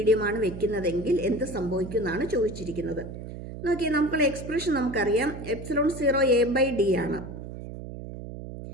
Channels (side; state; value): right; noise; hum, 10 dB below the sound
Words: വെക്കുന്നതെങ്കിൽ എന്ത് സംഭവിക്കും എന്നാണ് ചോദിച്ചിരിക്കുന്നത്. നോക്കിയാൽ നമുക്കുള്ള എക്സ്പ്രഷൻ നമുക്കറിയാം, എപ്സിലോൺ 0 എ ബൈ ഡി ആണ്.